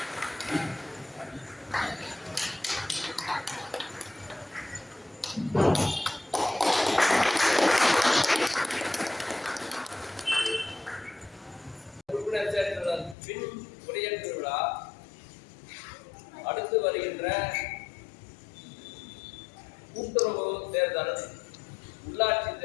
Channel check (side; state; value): right; drops out; at 13.2 s